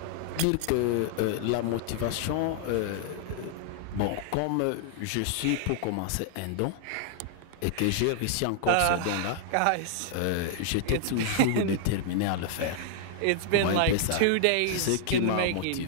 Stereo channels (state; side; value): different; both; correlation -0.01